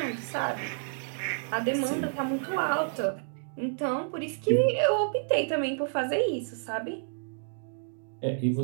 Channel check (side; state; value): left; silent; digital silence